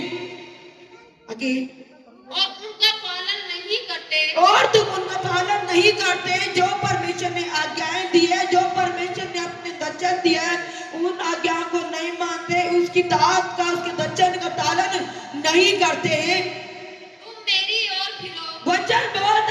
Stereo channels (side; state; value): both; identical; correlation 1.00